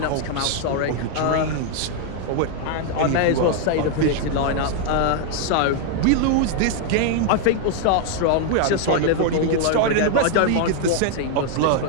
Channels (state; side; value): different; both; correlation 0.00